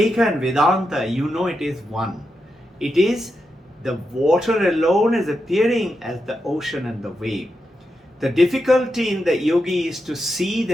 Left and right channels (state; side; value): normal; both; correlation 0.86